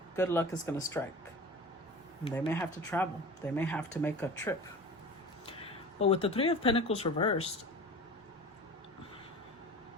good luck is going to strike. And they may have to travel. They may have to make a trip. But with the 3 of Pentacles reversed,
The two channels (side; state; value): both; normal; correlation 0.35